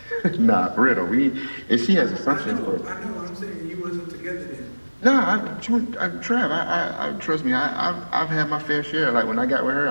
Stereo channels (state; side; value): inverted; both; correlation -1.00